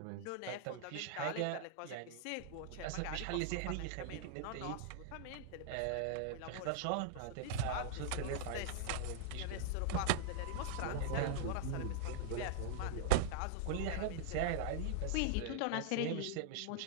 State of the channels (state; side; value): different; both; correlation -0.01